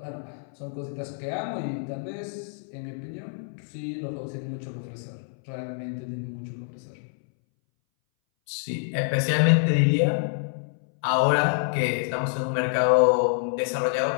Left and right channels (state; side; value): silent; right; 60 dB below the other